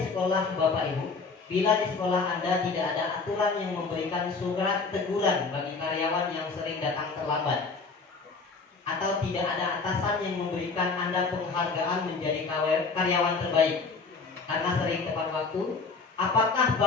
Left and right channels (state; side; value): quieter; right; 4.4 dB